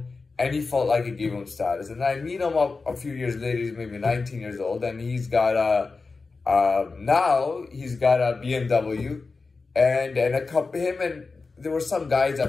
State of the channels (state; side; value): quieter; right; 4.1 dB